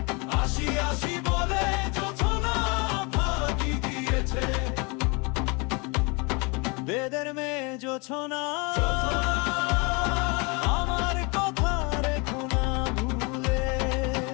আসি আসি বলে জোছনা ফাঁকি দিয়েছে। বেদের মেয়ে জোছনা আমার কথা রেখো না ভুলে।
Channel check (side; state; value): right; quieter; 29.8 dB